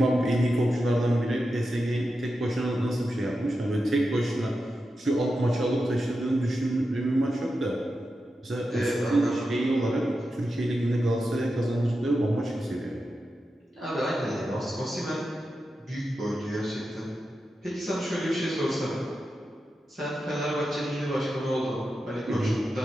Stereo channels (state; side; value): normal; both; correlation 0.90